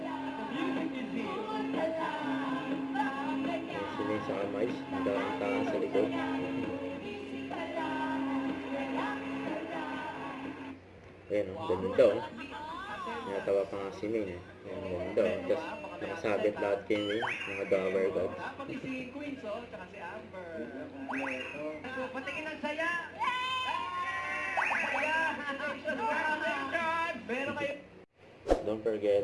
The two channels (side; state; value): both; identical; correlation 1.00